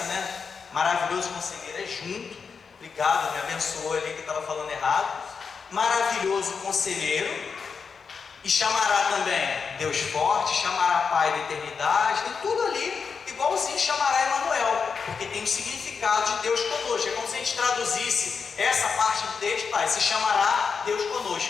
né? Maravilhoso Conselheiro é junto. Obrigado, me abençoou ali que eu estava falando errado. maravilhoso conselheiro, e chamará também Deus forte, chamará Pai da eternidade, tem tudo ali, igualzinho chamará Emanuel, porque tem o significado de Deus conosco. É como se a gente traduzisse essa parte do texto, se chamará Deus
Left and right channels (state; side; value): quieter; right; 5.7 dB